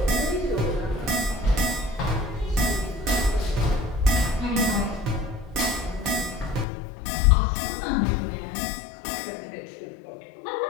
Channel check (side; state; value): right; drops out; at 6.7 s